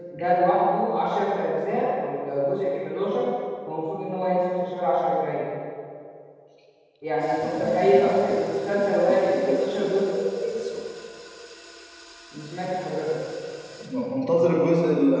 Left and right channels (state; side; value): identical; both; correlation 1.00